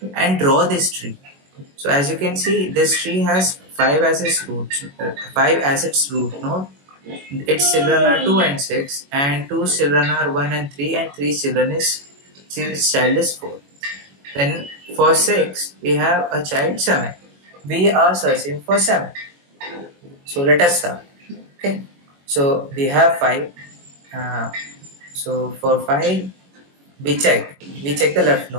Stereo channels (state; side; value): late; left; 21 ms